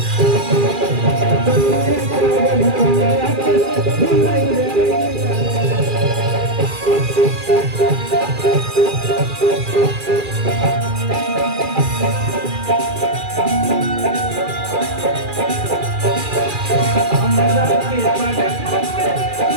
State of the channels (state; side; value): late; left; 2.4 ms